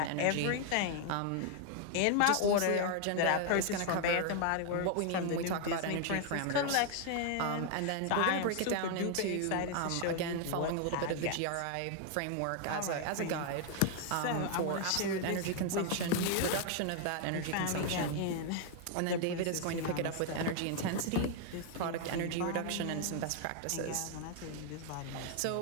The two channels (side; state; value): both; different; correlation 0.00